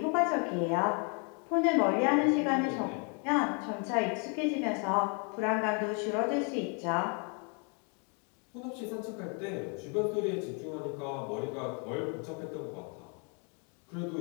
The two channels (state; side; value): quieter; right; 37.2 dB